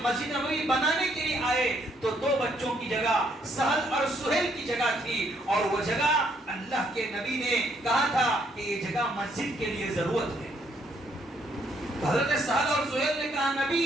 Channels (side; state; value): both; normal; correlation 0.70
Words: مسجد نبوی بنانے کے لیے آئے تو دو بچوں کی جگہ سہل اور سہیل کی جگہ تھی، اور وہ جگہ اللہ کے نبی نے کہا تھا کہ یہ جگہ مسجد کے لیے ضرورت ہے۔ حضرت سہل اور سہیل نے کہا نبی